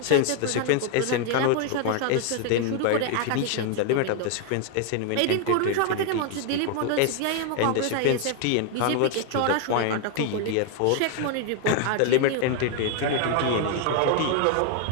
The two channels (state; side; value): different; both; correlation 0.00